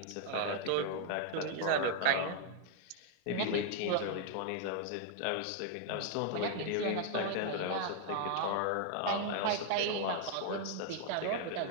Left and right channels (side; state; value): both; different; correlation 0.00